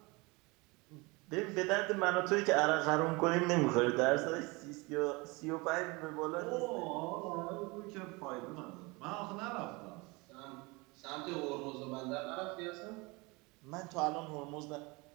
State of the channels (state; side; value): quieter; left; 25.7 dB